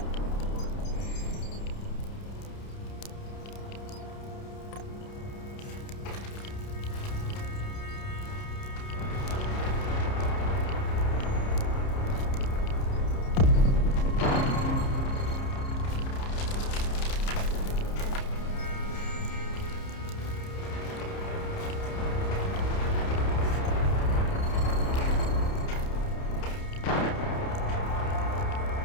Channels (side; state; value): right; late; 30 ms